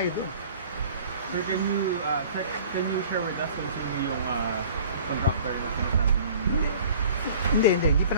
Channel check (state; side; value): inverted; both; correlation -0.48